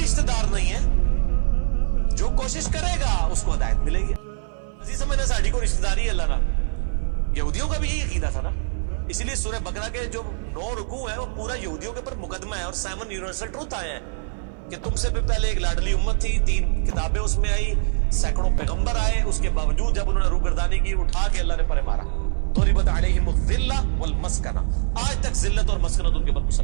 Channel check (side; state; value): left; silent; 58 dB below the other